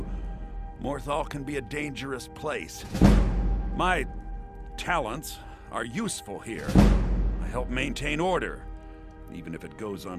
Morthal can be a dangerous place. My talents are useful here. I help maintain order, even if it goes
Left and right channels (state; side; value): identical; both; correlation 1.00